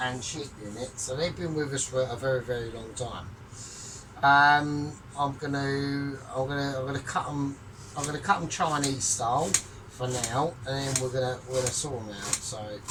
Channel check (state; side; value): identical; both; correlation 1.00